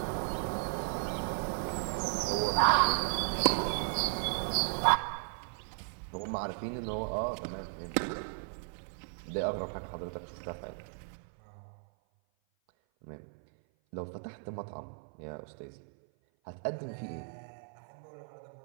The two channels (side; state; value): left; silent; 54 dB below the other